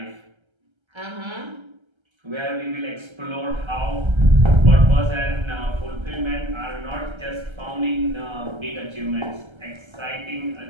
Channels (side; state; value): left; late; 1.3 ms